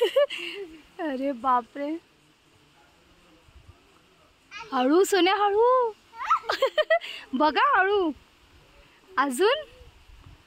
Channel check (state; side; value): identical; both; correlation 1.00